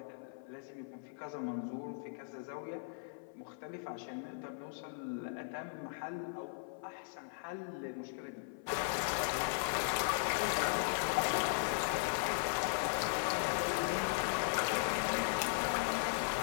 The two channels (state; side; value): silent; right; 52 dB below the other